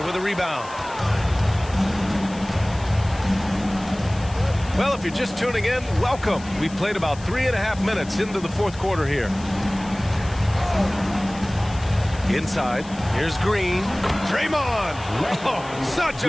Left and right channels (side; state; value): left; noise; hiss, 19 dB below the sound